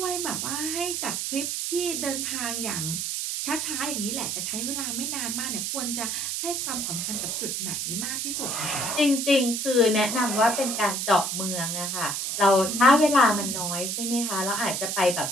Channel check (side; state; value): right; noise; hiss, 2 dB below the sound